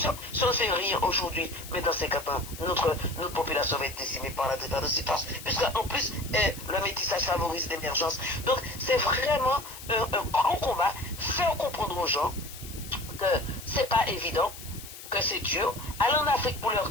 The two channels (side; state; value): left; noise; hiss, 14 dB below the sound